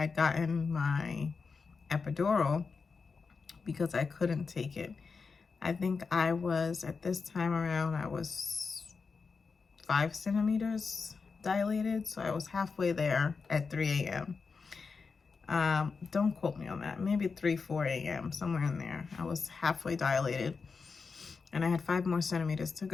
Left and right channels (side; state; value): right; quieter; 4.9 dB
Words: gotten my epidural because I couldn't take it. I think I was, at this time around, I was 5 centimeters dilated. So I was halfway there at 3 a.m. Don't quote me on that. Maybe 3, 4 a.m., somewhere in there. I was halfway dilated and I had 5 more centimeters to